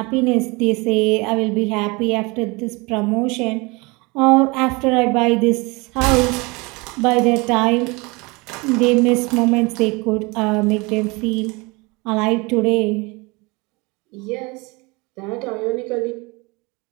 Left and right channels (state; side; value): quieter; left; 26.3 dB